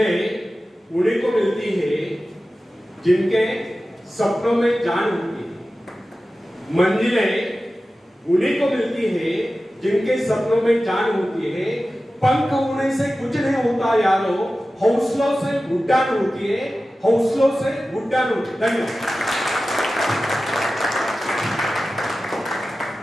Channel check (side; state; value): both; normal; correlation 0.95